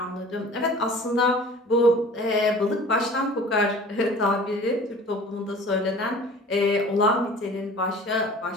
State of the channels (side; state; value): both; normal; correlation 0.45